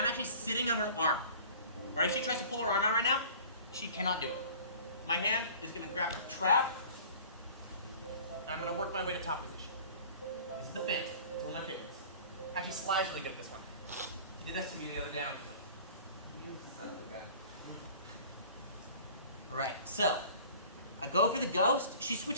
actually sitting on her arm. Right? If she tries to pull her arm out right now, she cannot do it. My hand is going to grab her trap, and I'm going to work my way to top position. This is the fence. It's one of my favorites. Actually, Sly's really good at this one. He did that to me the other day. I was like, you son of a gun. Alright, so I go for the ghost. She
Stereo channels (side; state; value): both; inverted; correlation -0.45